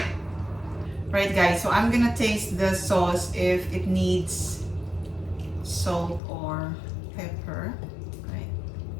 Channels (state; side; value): drops out; right; at 6.2 s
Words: Right guys, so I'm gonna taste the sauce if it needs salt or pepper. Right.